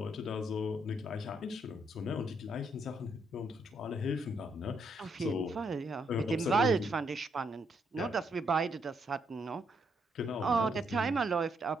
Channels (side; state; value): both; normal; correlation 0.75